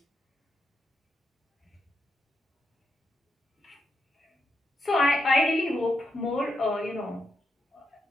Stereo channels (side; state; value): both; normal; correlation 0.83